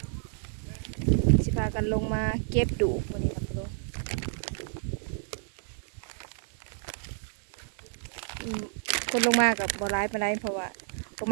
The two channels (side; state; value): left; silent; 58 dB below the other